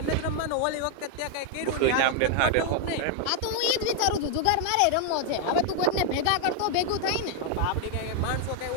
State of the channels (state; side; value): different; both; correlation 0.00